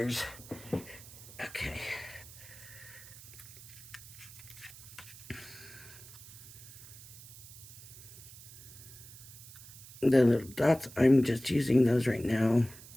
Okay. the little dots, I'm just using those right now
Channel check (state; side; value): noise; right; hiss, 17 dB below the sound